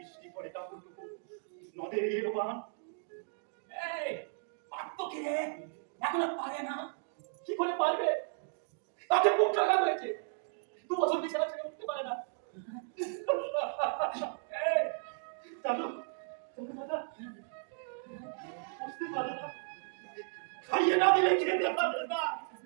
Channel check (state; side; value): silent; left; digital silence